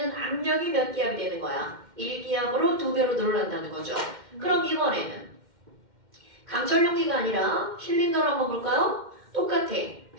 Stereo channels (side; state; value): left; late; 2.1 ms